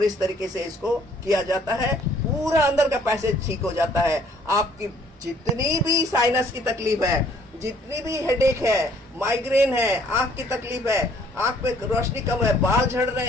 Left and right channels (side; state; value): both; normal; correlation 0.61